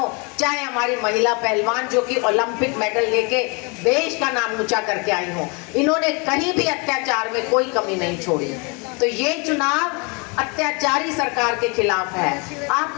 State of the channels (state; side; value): quieter; right; 31.3 dB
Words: चाहे हमारी महिला पहलवान जो कि ओलंपिक मेडल लेके देश का नाम ऊंचा करके आई हो, इन्होंने कहीं भी अत्याचार में कोई कमी नहीं छोड़ी। तो ये चुनाव अत्याचारी सरकार के खिलाफ है।